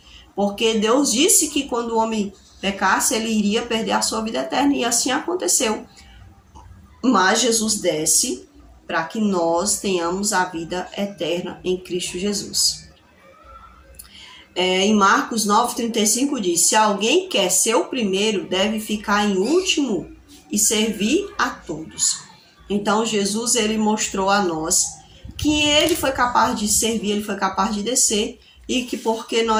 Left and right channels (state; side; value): identical; both; correlation 1.00